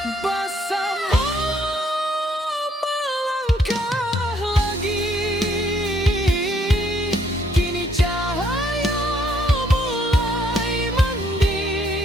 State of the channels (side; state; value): both; normal; correlation 0.68